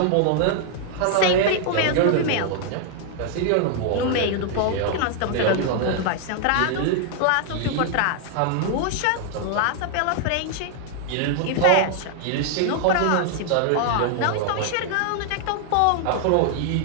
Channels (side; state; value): both; different; correlation 0.00